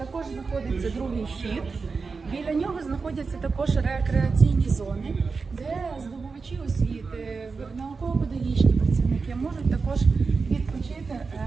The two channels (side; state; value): left; quieter; 4.6 dB